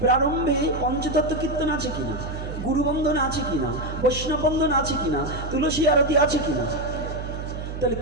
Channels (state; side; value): noise; right; hum, 7 dB below the sound